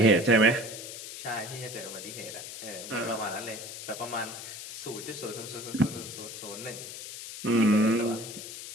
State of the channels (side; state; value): left; noise; hiss, 10 dB below the sound